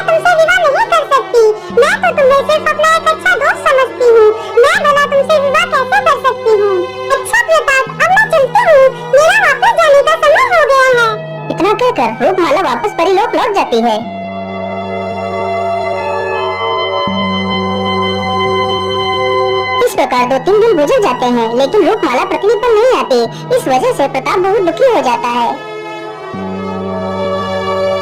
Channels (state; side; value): identical; both; correlation 1.00